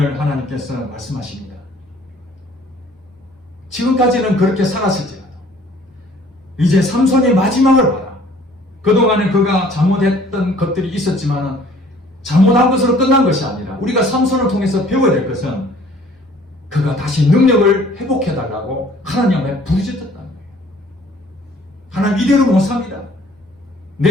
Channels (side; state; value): both; normal; correlation 0.54